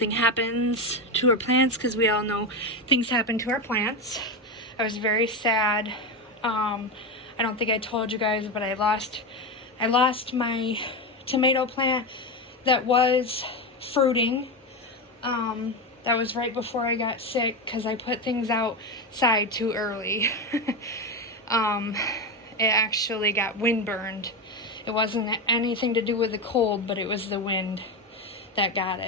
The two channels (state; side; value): normal; both; correlation 0.15